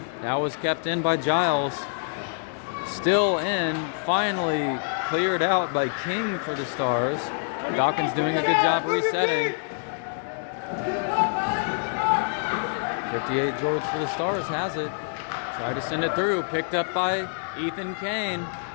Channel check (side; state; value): right; silent; 61 dB below the other